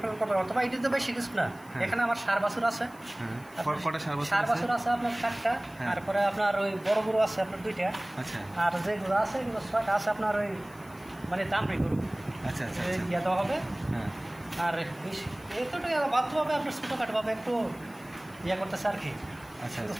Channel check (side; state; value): left; noise; hiss, 26 dB below the sound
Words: পালন করবে। অথবা এটি তো বেশি কিছু না। এখানে আমার সার বাছুর আছে, সার বাছুর আছে আপনার 4টা। তারপরে আপনার ওই বড় গরু আছে আপনার 2টা। আর যে গরু আছে এগুলো 6টা আছে আপনার ওই মানে দামড়ি গরু। ইয়ে দেওয়া হবে। আর এতটাই বাধ্যভাবে আপনার ছোটোখাটোভাবে একটু ইয়ে করতেছে আর কি।